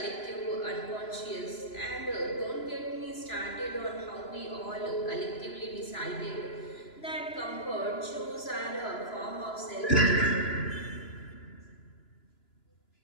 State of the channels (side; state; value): right; late; 2.9 ms